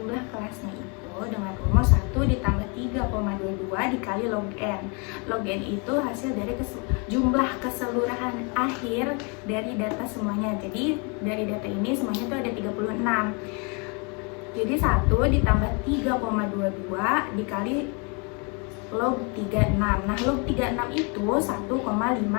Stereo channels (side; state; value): right; quieter; 33.4 dB